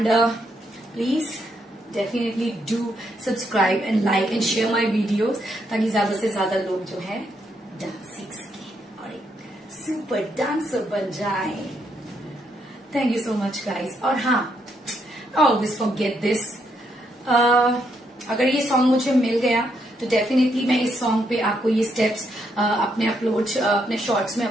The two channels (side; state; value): both; normal; correlation 0.76